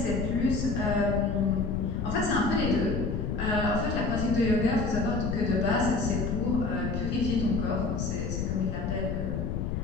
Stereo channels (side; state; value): left; noise; rumble, 2 dB below the sound